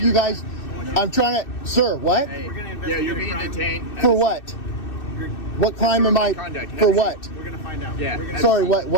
you guys. I'm trying to, sir, what? Hey, yeah, you're being detained. For what? What crime am I, Conduct. for what? We're going to find out. Yeah. Sorry,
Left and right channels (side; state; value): right; late; 2.6 ms